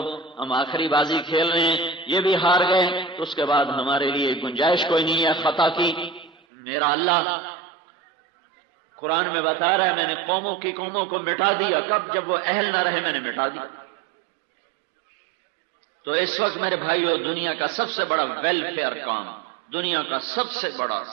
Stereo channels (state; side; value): drops out; left; at 6.4 s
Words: ہم آخری بازی کھیل رہے ہیں، یہ بھی ہار گئے تو اس کے بعد ہمارے لیے گنجائش کوئی نہیں ہے خطا کی. میرا اللہ قرآن میں بتا رہا ہے میں نے قوموں کو مٹا دیا. کب؟ جب وہ اہل نہ رہے میں نے مٹا دیا. تو اس وقت میرے بھائیو دنیا کا سب سے بڑا ویلفیئر کام، دنیا کا سب سے